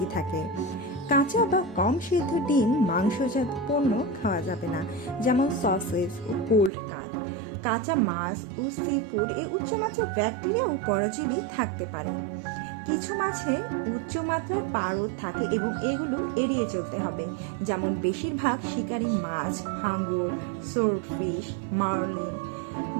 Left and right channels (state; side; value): drops out; left; at 6.7 s